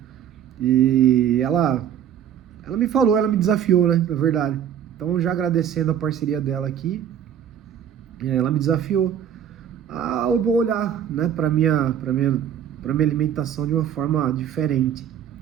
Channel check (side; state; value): left; quieter; 9.3 dB